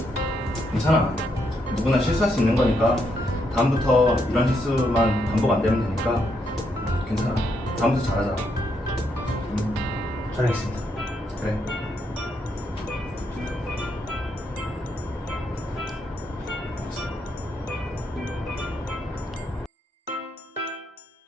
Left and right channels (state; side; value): normal; both; correlation 0.77